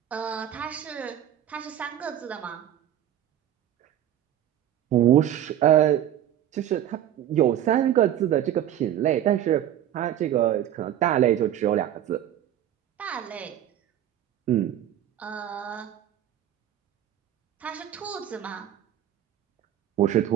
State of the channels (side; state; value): left; quieter; 11.4 dB